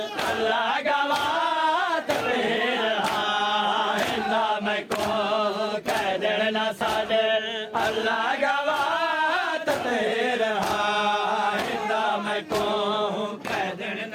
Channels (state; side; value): identical; both; correlation 1.00